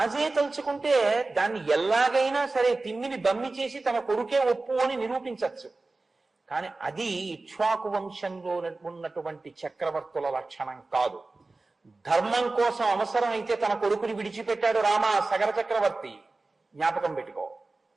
తలుచుకుంటే దాన్ని ఎలాగైనా సరే తిమ్మిని బమ్మి చేసి తన కొడుకే ఒప్పు అని నిరూపించవచ్చు. కానీ అది ఇక్ష్వాకు వంశంలో ఉన్నటువంటి చక్రవర్తుల లక్షణం కాదు. ధర్మం కోసం అవసరం అయితే తన కొడుకుని విడిచిపెట్టాడు రామ సగర చక్రవర్తి. జ్ఞాపకం పెట్టుకో.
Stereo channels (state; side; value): quieter; left; 3.4 dB